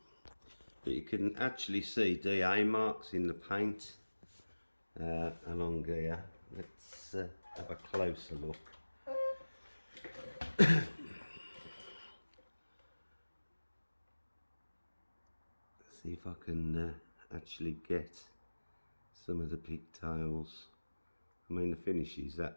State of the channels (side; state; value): both; inverted; correlation -1.00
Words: But you can actually see DA marks in the paint along here. Let's have a closer look. See if I can actually get some of the pigtails. I mean, the finish is